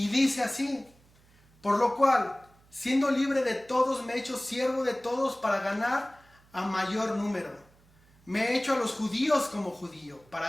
dice así: por lo cual, siendo libre de todos, me he hecho siervo de todos para ganar a mayor número. Me he hecho a los judíos como judío,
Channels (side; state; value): right; noise; hum, 30 dB below the sound